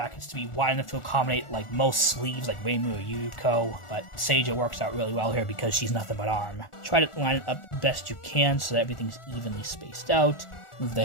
to be wide enough to accommodate like most sleeves like Reimu or Yuko, but Seija works out really well here because she's nothing but arm. Try to line it up best you can so that everything's evenly spaced out. Move the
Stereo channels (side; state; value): right; late; 1.4 ms